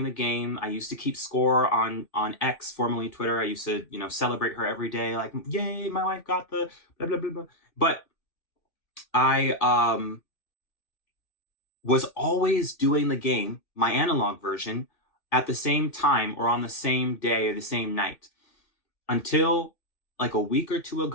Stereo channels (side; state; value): right; late; 1.9 ms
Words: the game. I used to keep score on X, formerly Twitter. I used to, celebrate her every day, like, yay, my wife got the blah, blah, blah, blah. But I was always doing the game, my analog version, at the same time or on the same day or the same night. Until like a week or two